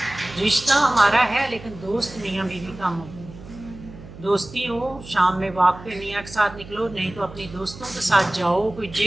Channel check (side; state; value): right; noise; hum, 16 dB below the sound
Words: رشتہ ہمارا ہے لیکن دوست میاں بیوی کم ہو، دوستی ہو، شام میں واک پہ میاں کے ساتھ نکلو، نہیں تو اپنی دوستوں کے ساتھ جاؤ، کوئی